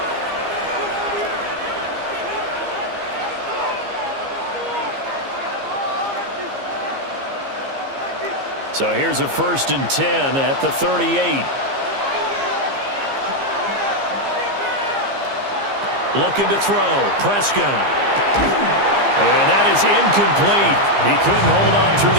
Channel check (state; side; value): late; left; 15 ms